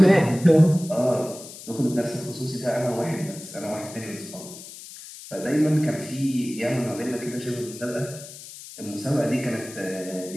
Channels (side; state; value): left; noise; hiss, 15 dB below the sound